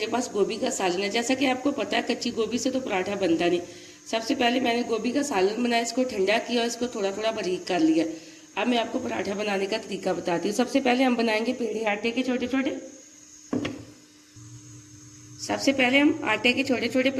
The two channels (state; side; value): identical; both; correlation 1.00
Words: पास गोभी का सालन है। जैसा कि आपको पता है कच्ची गोभी से तो पराठा बनता नहीं। सबसे पहले मैंने गोभी का सालन बनाया, इसको ठंडा किया और इसको थोड़ा थोड़ा बारीक कर लिया। अब मैं आपको पराठा बनाने का तरीका बताती हूँ। सबसे पहले हम बनाएंगे पेड़े आटे के छोटे छोटे। सबसे पहले हम आटे के छोटे छोटे